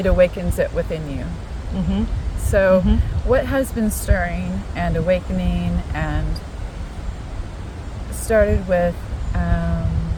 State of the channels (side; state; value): both; identical; correlation 1.00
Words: awakens it within you. So what has been stirring and awakening and started with